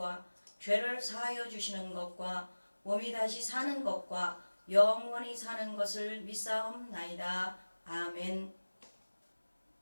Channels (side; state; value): both; inverted; correlation -1.00